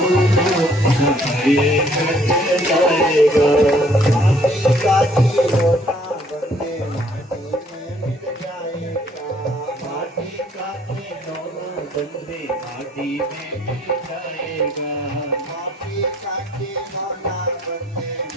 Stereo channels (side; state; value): both; normal; correlation 0.62